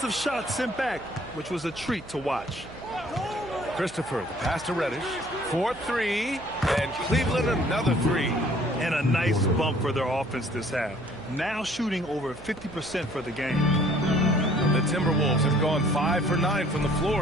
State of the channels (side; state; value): right; noise; hum, 18 dB below the sound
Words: of shots sent back, which was a treat to watch. Christopher, the pass to Reddish. 4-3, and Cleveland another 3. And a nice bump for their offense this half. Now shooting over 50% for the game. The Timberwolves have gone 5 for 9 from the